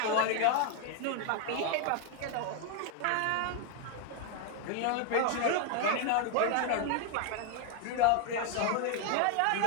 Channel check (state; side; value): different; both; correlation 0.00